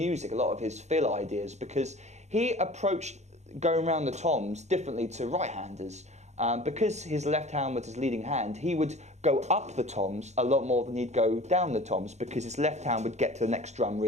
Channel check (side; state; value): left; late; 0.33 ms